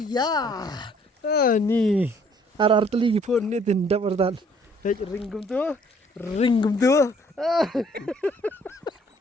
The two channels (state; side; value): normal; both; correlation 0.61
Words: Ni. Ar teligi pun ni tindak pertan. Ringgum tu.